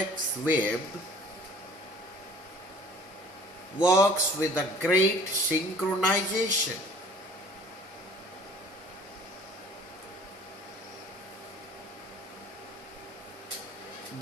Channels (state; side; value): normal; both; correlation 0.50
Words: web works with a great synchronization.